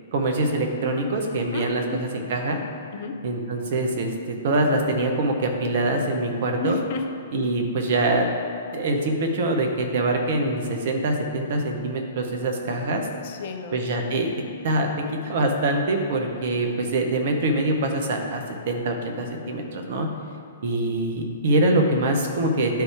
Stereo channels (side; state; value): both; inverted; correlation -0.43